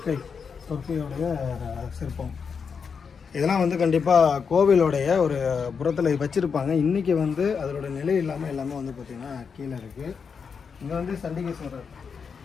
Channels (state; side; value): quieter; right; 6.0 dB